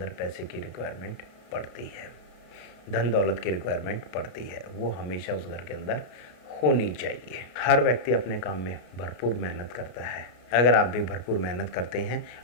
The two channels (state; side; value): late; right; 33 ms